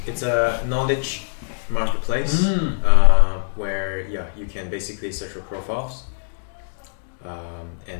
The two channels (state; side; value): silent; right; digital silence